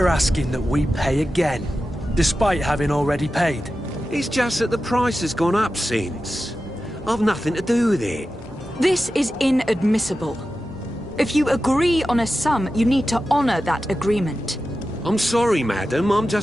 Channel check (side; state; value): both; normal; correlation 0.92